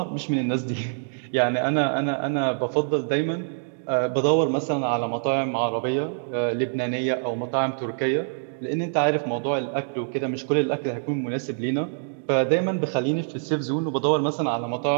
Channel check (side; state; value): left; silent; digital silence